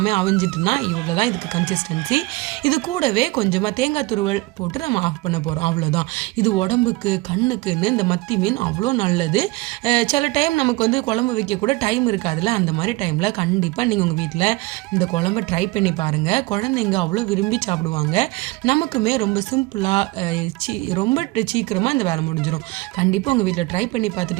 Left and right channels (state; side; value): quieter; left; 21.7 dB